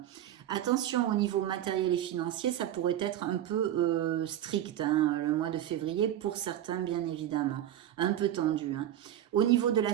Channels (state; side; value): quieter; left; 11.7 dB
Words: Attention au niveau matériel et financier, ça pourrait être un peu strict, hein, le mois de février, pour certains bien évidemment, un peu tendu, hein. Au niveau de la